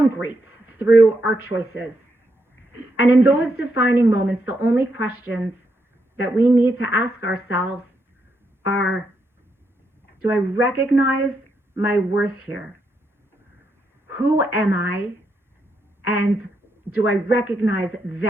great through our choices. And in those defining moments, the only questions that we need to ask ourselves are, do I recognize my worth here? Who am I? And do I recognize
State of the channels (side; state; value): both; normal; correlation 0.80